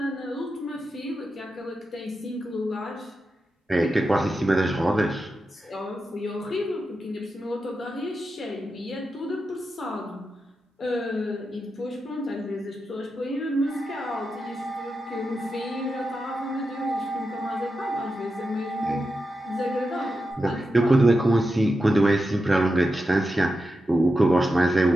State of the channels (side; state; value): both; normal; correlation 0.89